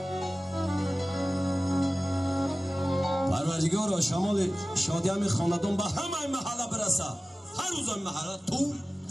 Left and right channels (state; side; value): normal; both; correlation 0.97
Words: پروردگارا شمال شادی همه خاندان به همه محله برسه هر روز این محله تو